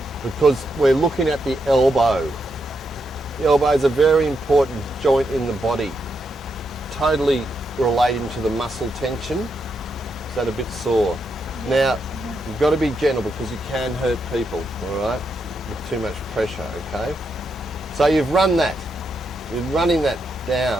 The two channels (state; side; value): normal; both; correlation 0.82